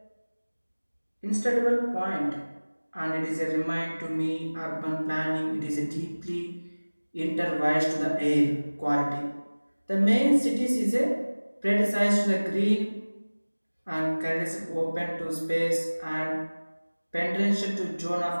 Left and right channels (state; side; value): inverted; both; correlation -1.00